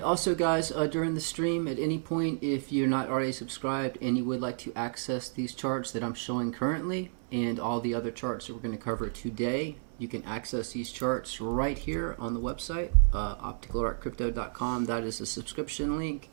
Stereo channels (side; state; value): left; silent; 57 dB below the other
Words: also, guys, during the stream, at any point, if you're not already subscribed and you would like to access these charts that I'm showing currently and all the other charts that we're going to cover today, you can access these charts right here on the website, opticalartcrypto.com. That is a subscription link.